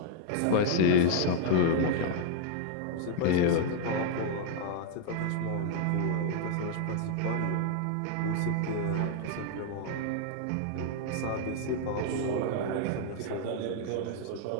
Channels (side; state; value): both; different; correlation 0.00